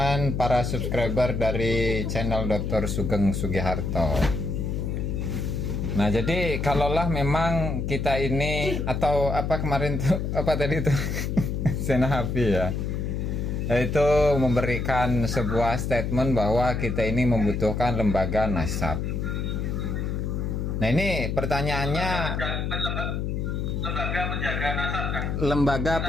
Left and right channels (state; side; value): noise; left; hum, 1 dB below the sound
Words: para subscriber dari channel Dr. Sugeng Sugiharto. Nah, jadi kalaulah memang kita ini atau apa kemarin tuh apa tadi tuh Senahapi ya, yaitu memberikan sebuah statement bahwa kita ini membutuhkan lembaga nasab. Nah, ini pertanyaannya, lembaga penjaga nasab kan? Lembaga